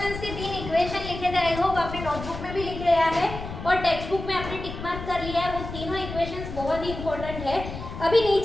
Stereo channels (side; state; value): left; noise; rumble, 9 dB below the sound